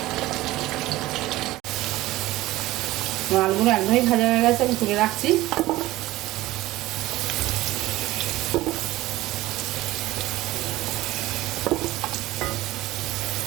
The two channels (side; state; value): left; quieter; 17.3 dB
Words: আলুগুলো একদমই ভাজা হয়ে গেছে, আমি তুলে রাখছি।